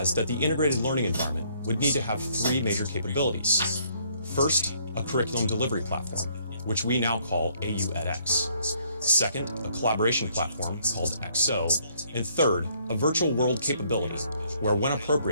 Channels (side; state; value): both; inverted; correlation -0.66